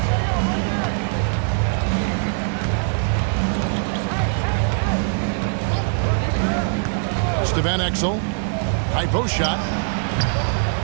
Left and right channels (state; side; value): silent; left; 64 dB below the other